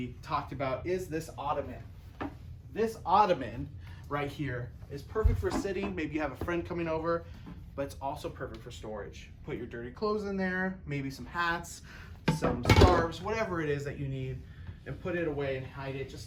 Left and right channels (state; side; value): identical; both; correlation 1.00